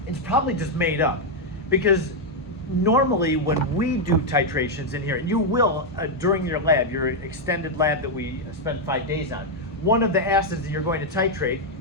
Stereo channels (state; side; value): normal; both; correlation 0.00